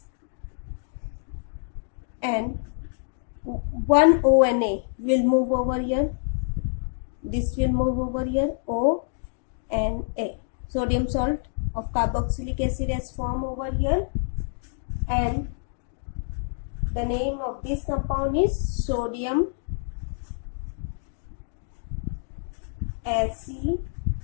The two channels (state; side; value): silent; right; digital silence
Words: and one ONA will move over here. This will move over here, O and A. Sodium salt of carboxylic acid has formed over here, and the name of this compound is sodium acetate.